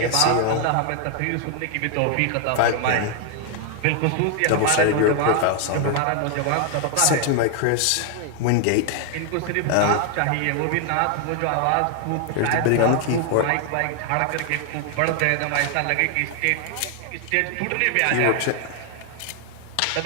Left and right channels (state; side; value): different; both; correlation 0.00